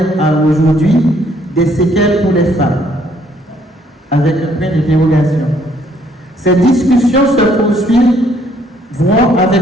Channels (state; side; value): normal; both; correlation 0.66